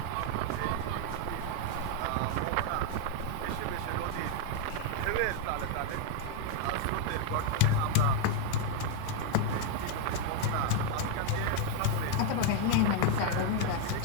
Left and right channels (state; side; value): different; both; correlation 0.00